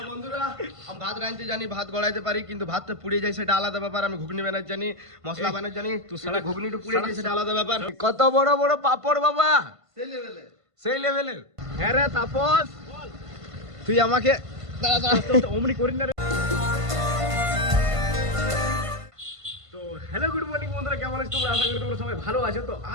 বন্ধুরা, আমি ভাত রাঁধতে জানি, ভাত গড়াইতে পারি, কিন্তু ভাতটা পুড়ে যায় সেটা আলাদা ব্যাপার। আমি ঘুগনি বানাতে জানি, মশলা বানাতে জানি, তুই সারা ঘুগনিটা পুড়ে যায় সেটা আলাদা ব্যাপার। কত বড় বড় পাপড় বাবা, সেই লেভেলে। সেই লেভেলের। হ্যাঁ রে তাপস, তুই আমাকে দাঁড়া দাঁড়া অমনি করিস না রে। তো হ্যালো গুড মর্নিং বন্ধুরা, কেমন আছো তোমরা? আশা করি তোমরা সবাই ভালো আছো। তো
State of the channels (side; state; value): left; late; 1.5 ms